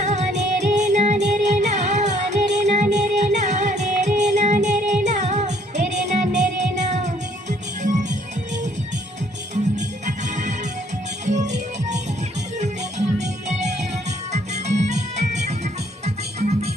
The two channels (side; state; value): both; normal; correlation 0.63